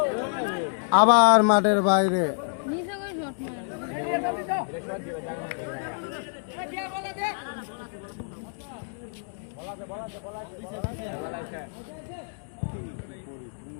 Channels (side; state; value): right; silent; digital silence